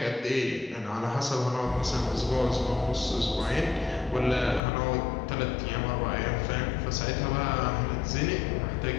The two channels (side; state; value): right; drops out; at 4.6 s